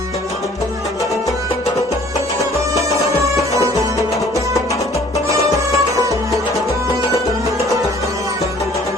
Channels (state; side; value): normal; both; correlation 0.54